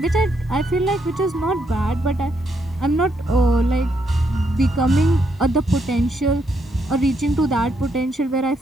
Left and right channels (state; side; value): normal; both; correlation 0.77